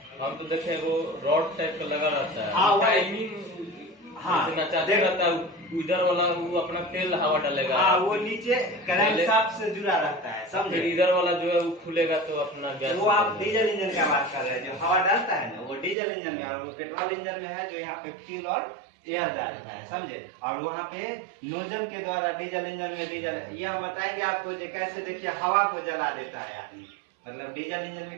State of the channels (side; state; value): left; drops out; at 16.0 s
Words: हम तो देखे वो रॉड टाइप का लगा रहता है, हाँ, टाइमिंग, हाँ नचाते रहता है, उधर वाला वो अपना तेल हवा डालेगा, हाँ वो नीचे करंट शाफ्ट से जुड़ा रहता है, समझे। इधर वाला जो है वो खुलेगा तो अपना गैस। वो आप डीजल इंजन का बात कर रहे हैं, जो हवा डालता है ना वो डीजल इंजन में, और वो पेट्रोल इंजन में है जो यहाँ पे फ्यूल और एयर डालता है, समझे। और वहाँ पे नोजल के द्वारा डीजल इंजन में डीजल, ये हम बताएंगे आपको कैसे। देखिए हवा को जला देता है आदमी, मतलब डीजल इंजन